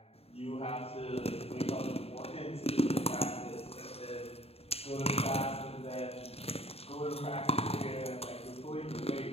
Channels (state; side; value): late; right; 0.29 ms